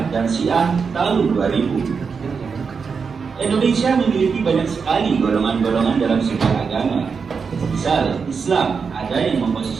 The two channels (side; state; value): left; quieter; 5.6 dB